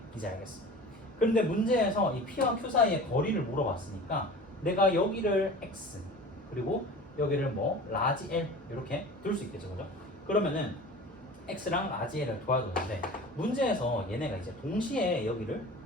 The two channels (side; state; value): both; normal; correlation 0.38